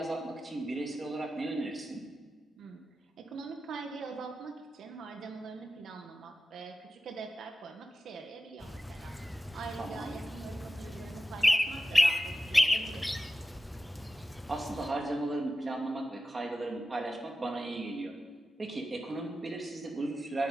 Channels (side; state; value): both; normal; correlation 0.93